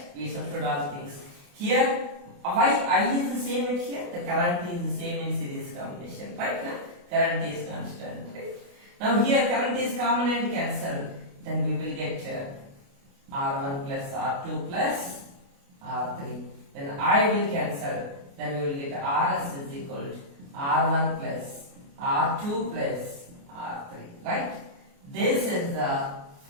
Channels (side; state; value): left; late; 28 ms